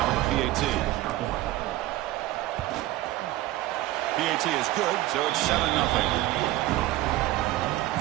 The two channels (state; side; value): quieter; left; 16.4 dB